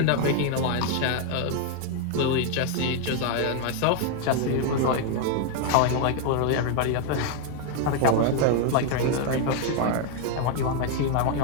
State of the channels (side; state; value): both; different; correlation 0.00